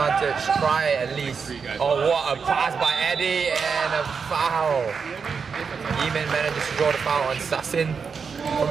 try at least. Oh, what a pass by Eddie and a foul. Yimin manages to draw the foul on Sassin from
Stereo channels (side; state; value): left; quieter; 5.7 dB